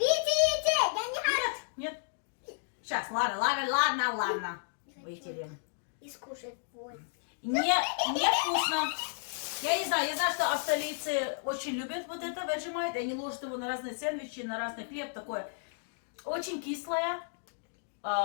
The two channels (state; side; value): silent; right; digital silence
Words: я не хочу. Нет. Сейчас, ладно. Вытерем. И скушать вот. Не вкусно. Я не знаю, что австралийцы очень любят вот это Vegemite. Они ложат его на разные сэндвичи, на разный хлеб такое. Очень кислое,